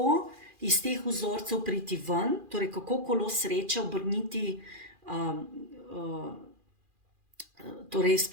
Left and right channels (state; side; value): late; left; 2.4 ms